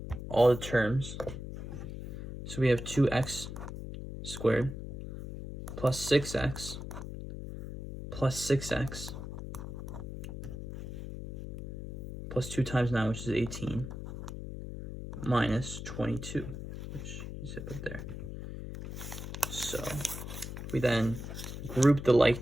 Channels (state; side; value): noise; left; hum, 8 dB below the sound